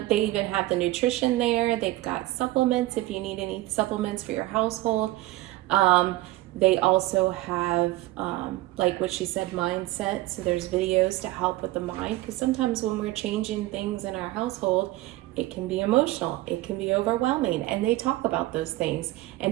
they even have the nutrition there. They've got supplements if you need any supplements for your household. They also have, like what she said, mindset. So there's videos to help with the mind, because sometimes when we're changing things in our household, it can be emotional, it can be overwhelming, and they talk about those things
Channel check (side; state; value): left; quieter; 18.1 dB